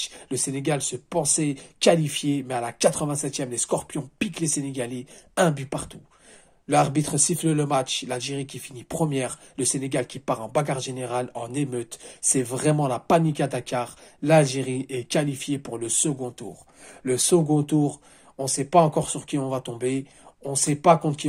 Le Sénégal se pensait qualifié. Mais à la 87e, les Scorpions piquent les Sénégalais. Un but partout. L'arbitre siffle le match, l'Algérie qui finit première, le Sénégal qui part en bagarre générale, en émeute. C'est vraiment la panique à Dakar. L'Algérie est qualifiée pour le second tour. Le second tour, on ne sait pas encore sur qui on va tomber. On ne sait pas contre qui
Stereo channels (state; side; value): identical; both; correlation 1.00